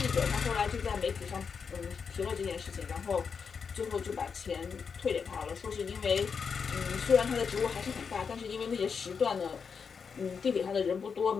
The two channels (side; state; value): right; quieter; 6.0 dB